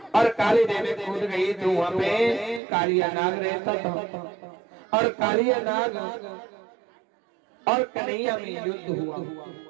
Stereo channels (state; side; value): drops out; left; at 2.6 s